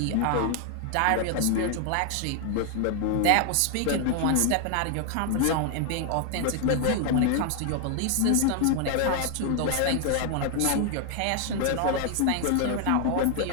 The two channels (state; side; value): different; both; correlation 0.00